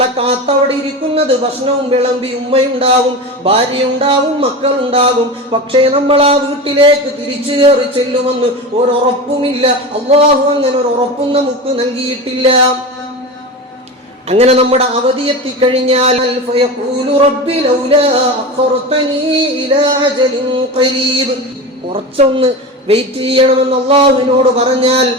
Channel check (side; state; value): both; normal; correlation 0.26